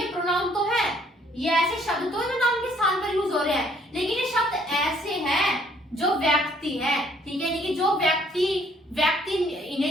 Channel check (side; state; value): both; normal; correlation 0.63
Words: प्रोनाउन तो है, ये ऐसे शब्द तो जो नाउन के स्थान पर यूज हो रहे हैं, लेकिन ये शब्द ऐसे हैं जो व्यक्ति है। ठीक है, यानी कि जो व्यक्ति